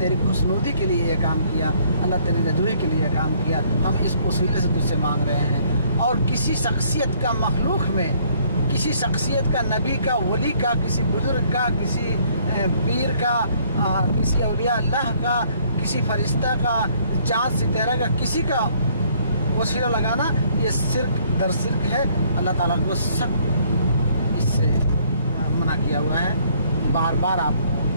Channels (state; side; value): inverted; both; correlation -0.63